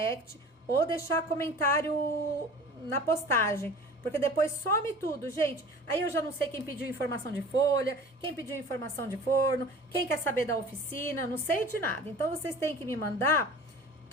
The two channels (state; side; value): normal; both; correlation 0.42